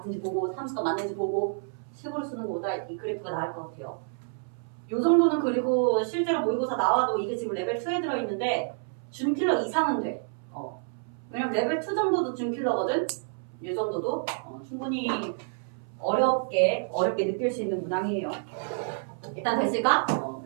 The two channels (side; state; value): left; silent; 59 dB below the other